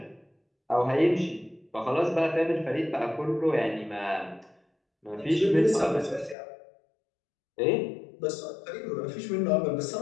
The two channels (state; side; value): drops out; right; at 6.4 s